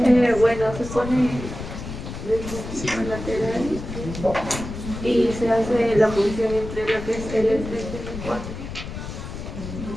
Bueno, se pone el lateral y se hace la punción entre lo que es el L3 y el 4.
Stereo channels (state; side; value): noise; left; rumble, 9 dB below the sound